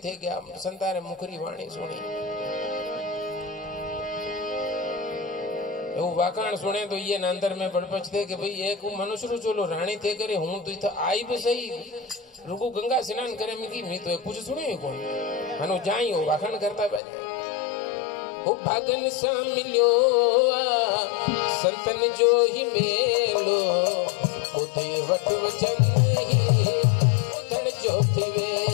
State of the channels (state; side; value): drops out; right; at 17.0 s